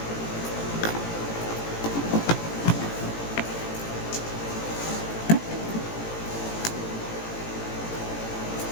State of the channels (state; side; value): late; right; 18 ms